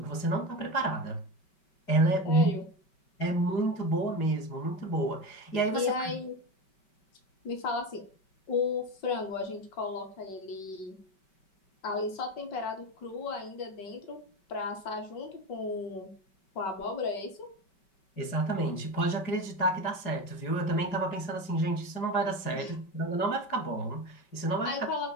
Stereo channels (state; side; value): late; right; 5.2 ms